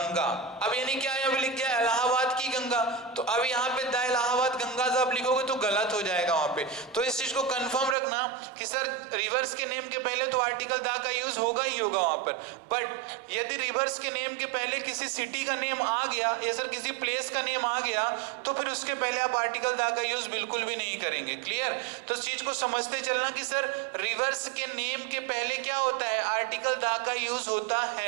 अब यानी क्या है, अब लिख गया इलाहाबाद की गंगा, तो अब यहाँ पे द इलाहाबाद गंगा जब लिखोगे तो गलत हो जाएगा वहां पे। तो इस चीज को कंफर्म रखना कि सर रिवर्स के नेम के पहले तो आर्टिकल दा का यूज होगा ही होगा वहां पर। बट यदि रिवर्स के नेम के पहले किसी सिटी का नेम आ गया या सर किसी प्लेस का नेम आ गया, तो फिर उसके पहले आप आर्टिकल दा का यूज बिल्कुल भी नहीं करेंगे, क्लियर। तो इस चीज को समझते चलना कि सर रिवर्स के नेम के पहले क्या होता है, आर्टिकल दा का यूज होता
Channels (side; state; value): left; drops out; at 8.0 s